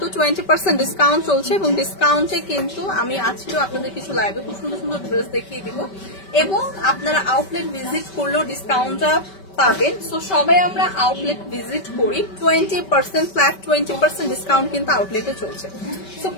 20% ডিসকাউন্ট চলছে এবং ডিসকাউন্টে কিন্তু আমি আজকেও আপনাদের কিছু লাইভে খুব সুন্দর সুন্দর ড্রেস দেখিয়ে দিব এবং আপনারা আউটলেট ভিজিট করলেও ডিসকাউন্টটা পাবেন। সো সবাই আমরা আউটলেট ভিজিট করি, 20% ফ্ল্যাট 20% ডিসকাউন্ট কিন্তু আউটলেটে চলছে। সো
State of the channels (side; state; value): right; late; 5.2 ms